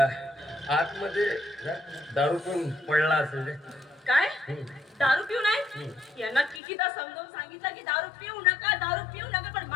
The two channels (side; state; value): right; drops out; at 6.6 s